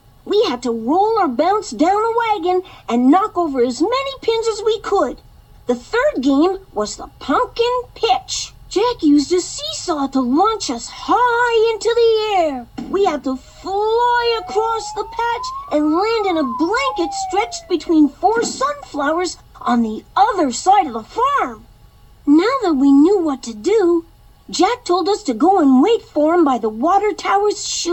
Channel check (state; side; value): identical; both; correlation 1.00